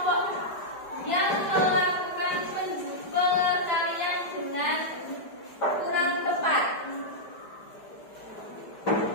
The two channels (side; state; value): right; late; 4.9 ms